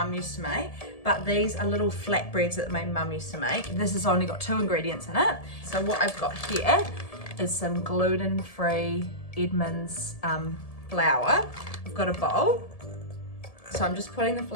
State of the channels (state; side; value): late; right; 1.7 ms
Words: used to make, but these are little flatbreads that my mum used to make. This has only got 2 ingredients in it. So what I've got here is some gluten-free Edmonds flour. I've got a bowl. So I'm just putting the